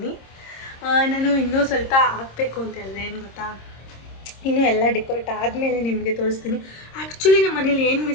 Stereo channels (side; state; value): right; late; 26 ms